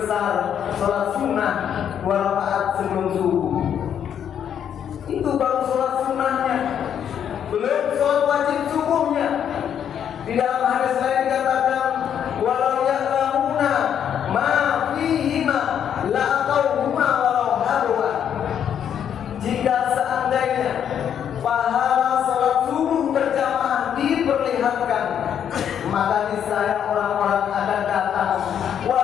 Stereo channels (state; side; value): quieter; right; 8.9 dB